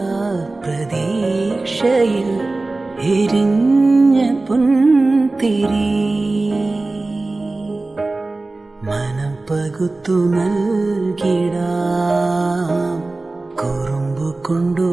പ്രതീക്ഷയിൽ എരിഞ്ഞ പുൻതിരി മനം പകുത്തു നൽകിടാം കുറുമ്പു കൊണ്ടു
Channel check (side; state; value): left; quieter; 3.2 dB